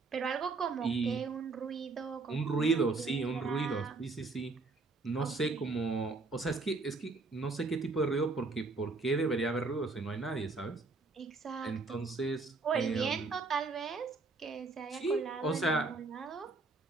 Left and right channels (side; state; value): left; quieter; 3.8 dB